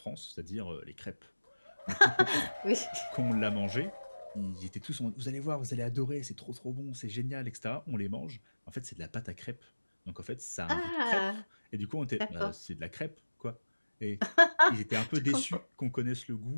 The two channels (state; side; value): inverted; both; correlation -1.00